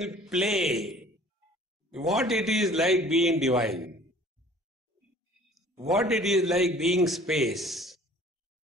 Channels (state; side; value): normal; both; correlation 0.50